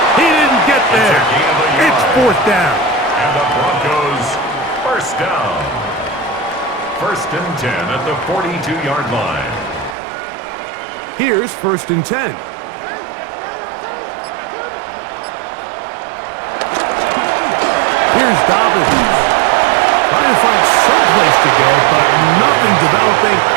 He didn't get there. It's 4th down. And the Broncos first down. 1st and 10 at the 42-yard line. Here's 1st and 10. Here's Dobbins. Trying to find some place to go, but nothing developing.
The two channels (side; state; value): left; drops out; at 10.0 s